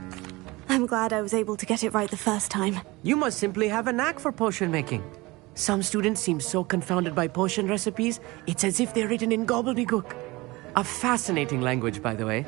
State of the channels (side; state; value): left; quieter; 22.1 dB